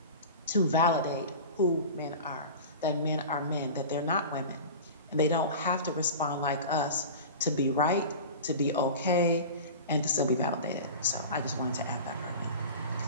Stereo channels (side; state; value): both; inverted; correlation -0.33